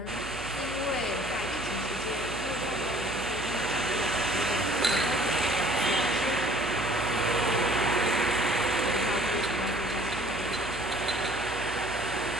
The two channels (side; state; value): left; noise; hum, 14 dB below the sound